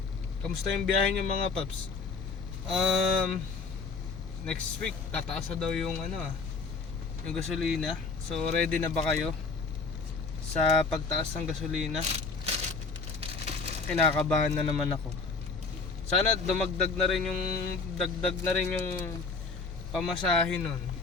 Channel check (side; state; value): right; quieter; 4.4 dB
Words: Kamusta yung biyahe nyo mga paps? Next week tataas na daw yung yung gasolina. So ready na ba kayo sa pagtaas ng gasolina? Kinakabahan na naman ako. Sana dumagdag na rin yung pamasahe nun.